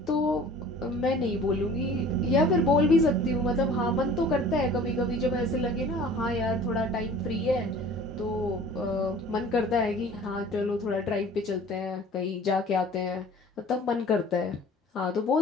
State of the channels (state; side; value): normal; both; correlation 0.47